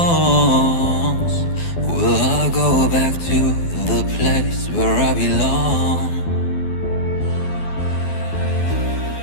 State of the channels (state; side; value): late; right; 12 ms